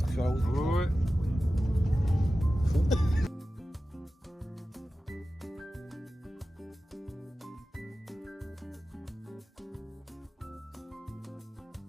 sur la route. Ouais.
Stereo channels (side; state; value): both; normal; correlation 0.94